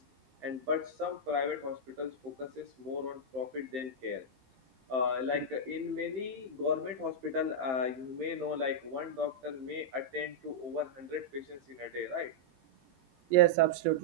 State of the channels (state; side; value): late; left; 15 ms